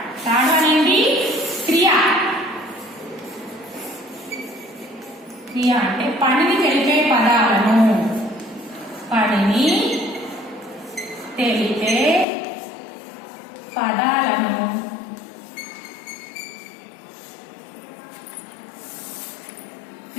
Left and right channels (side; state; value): right; drops out; at 12.2 s